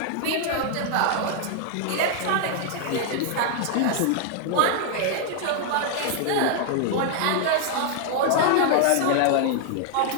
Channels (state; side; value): different; both; correlation 0.00